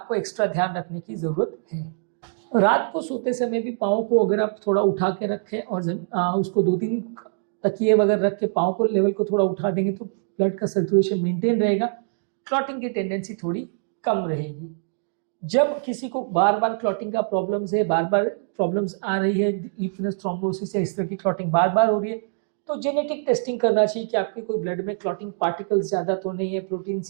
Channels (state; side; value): silent; left; digital silence